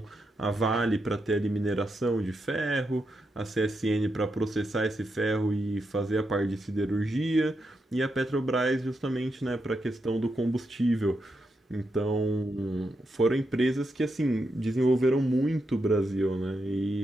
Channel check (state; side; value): normal; both; correlation 0.84